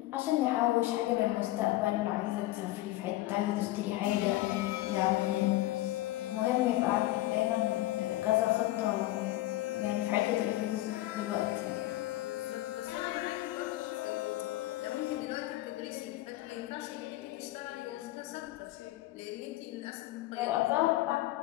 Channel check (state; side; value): quieter; right; 16.9 dB